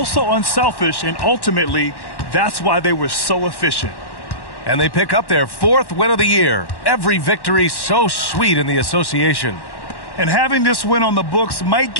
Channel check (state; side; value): late; right; 1.1 ms